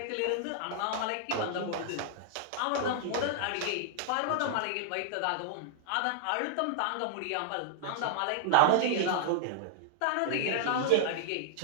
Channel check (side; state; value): both; different; correlation -0.01